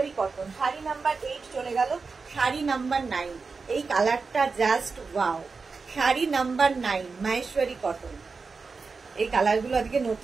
কটন। শাড়ি নাম্বার 8 চলে গেল। শাড়ি নাম্বার 9, এই কালারটা just wow. Sari number 9 Maheshwari cotton. এই কালারগুলো আজকে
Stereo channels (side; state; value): left; quieter; 4.6 dB